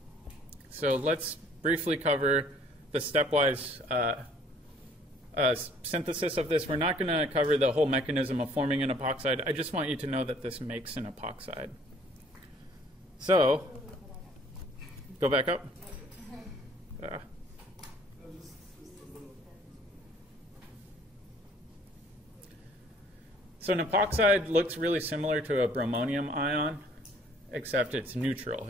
So let's briefly cover the stepwise synthesis of this. We're not going to cover the whole mechanism of forming an epoxide. I just want you to know that this makes an epoxide. So, go back up. So an epoxide looks really similar to a bromonium ion, except it's neutral.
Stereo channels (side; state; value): both; normal; correlation 0.58